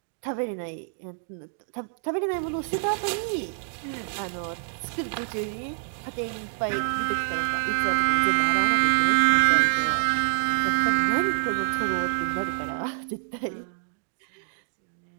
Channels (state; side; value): silent; left; digital silence